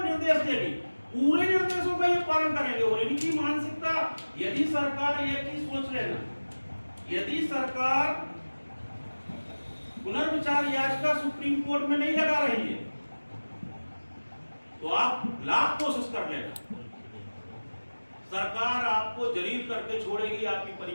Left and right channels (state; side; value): inverted; both; correlation -1.00